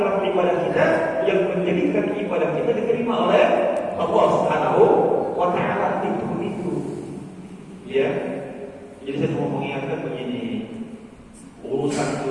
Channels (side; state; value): both; identical; correlation 1.00